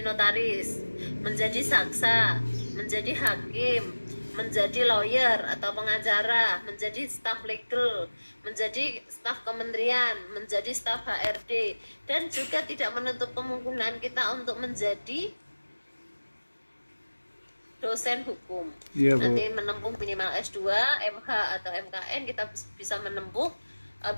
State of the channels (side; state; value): both; inverted; correlation -1.00